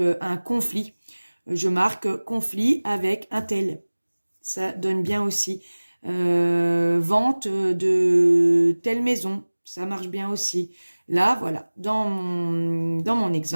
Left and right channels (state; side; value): inverted; both; correlation -1.00